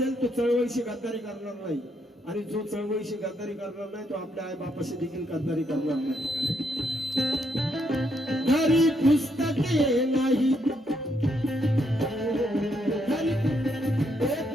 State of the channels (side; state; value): both; normal; correlation 0.75